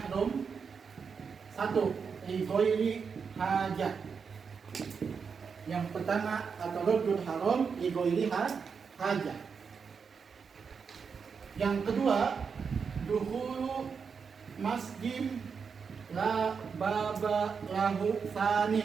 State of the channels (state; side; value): quieter; left; 5.9 dB